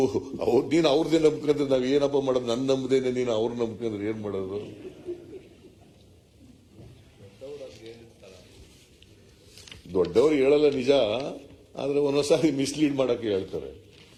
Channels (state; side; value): identical; both; correlation 1.00